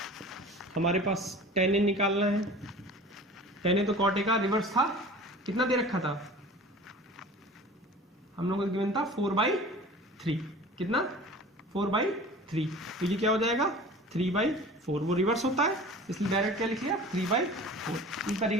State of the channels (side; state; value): both; normal; correlation 0.41